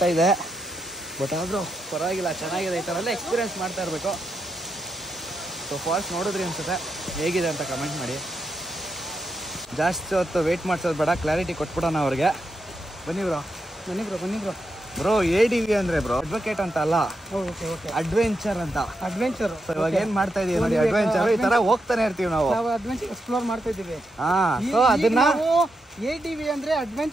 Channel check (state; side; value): normal; both; correlation 0.84